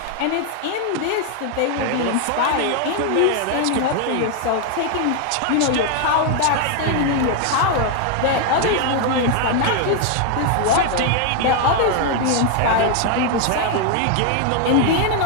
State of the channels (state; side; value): different; both; correlation 0.00